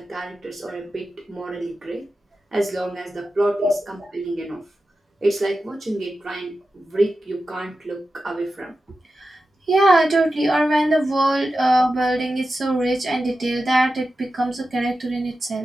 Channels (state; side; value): normal; both; correlation 0.92